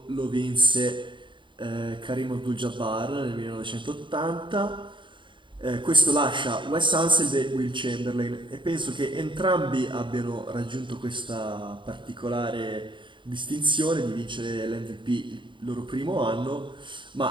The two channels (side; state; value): left; late; 0.23 ms